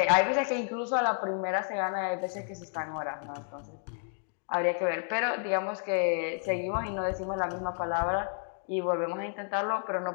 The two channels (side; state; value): right; silent; 57 dB below the other